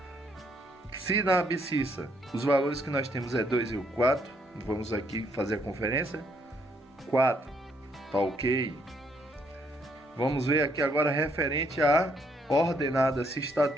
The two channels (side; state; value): both; normal; correlation 0.71